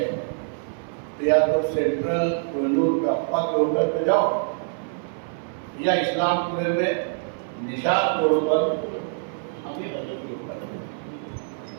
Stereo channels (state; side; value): silent; left; 56 dB below the other